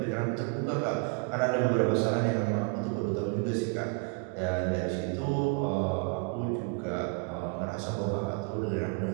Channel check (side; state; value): left; quieter; 33.3 dB